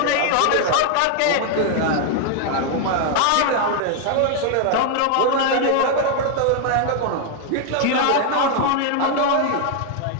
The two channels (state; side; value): different; both; correlation 0.00